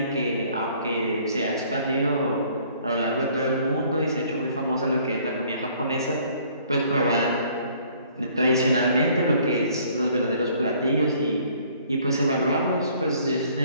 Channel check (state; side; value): inverted; both; correlation -0.59